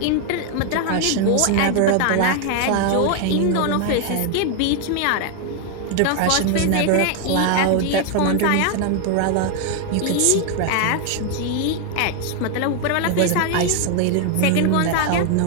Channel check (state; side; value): different; both; correlation 0.01